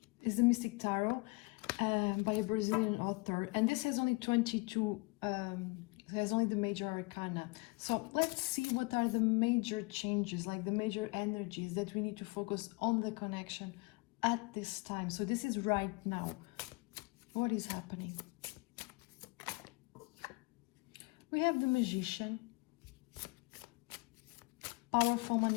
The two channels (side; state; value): right; quieter; 26.4 dB